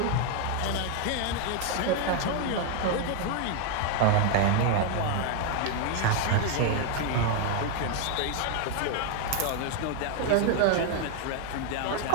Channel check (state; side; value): different; both; correlation 0.00